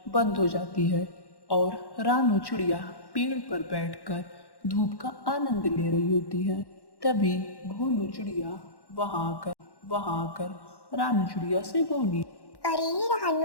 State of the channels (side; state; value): right; late; 1.1 ms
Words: बंद हो जाती है और रानू चिड़िया पेड़ पर बैठकर धूप का आनंद ले रही होती है। तभी भोलू चिड़िया वहां आकर रानू चिड़िया से बोली। अरे